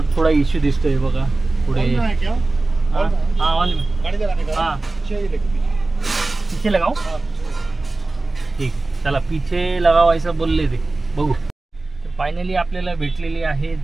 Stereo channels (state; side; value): quieter; left; 3.2 dB